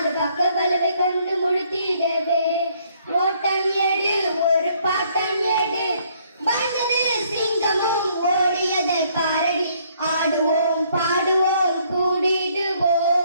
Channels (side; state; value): both; inverted; correlation -0.66